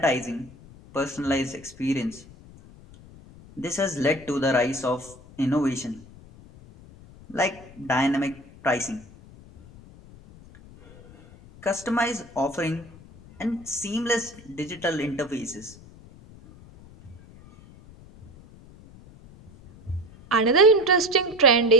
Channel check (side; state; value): left; noise; rumble, 21 dB below the sound